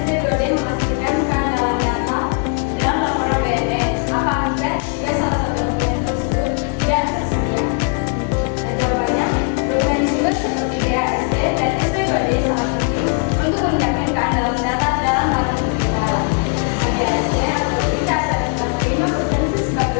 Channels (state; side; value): quieter; right; 38.8 dB